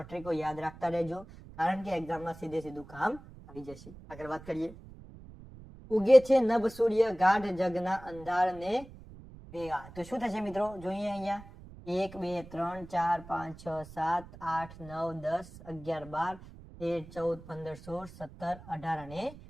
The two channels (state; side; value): noise; right; rumble, 18 dB below the sound